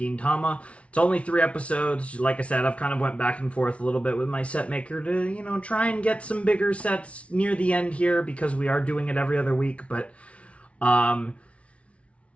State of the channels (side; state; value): right; late; 0.062 ms